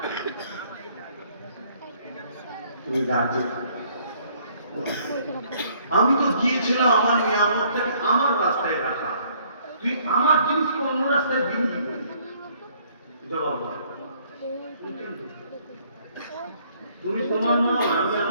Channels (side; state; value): both; inverted; correlation -0.63